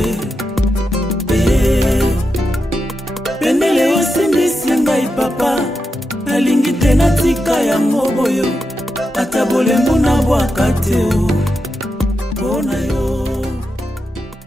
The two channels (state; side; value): normal; both; correlation 0.87